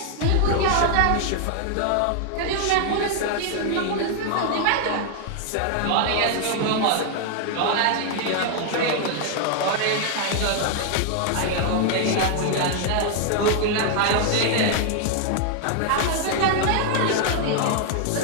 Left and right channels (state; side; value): different; both; correlation 0.00